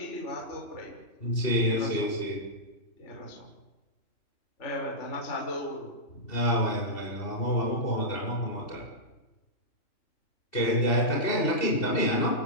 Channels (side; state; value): right; late; 2.7 ms